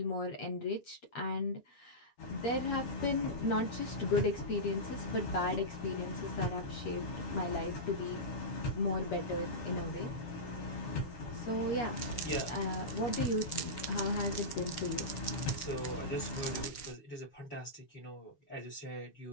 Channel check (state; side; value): late; right; 7.2 ms